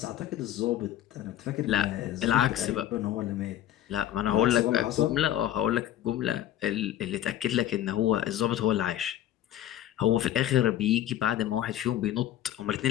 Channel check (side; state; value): right; quieter; 12.2 dB